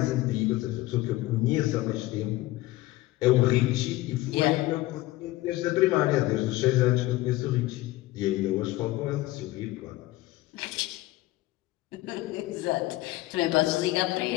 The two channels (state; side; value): quieter; right; 17.7 dB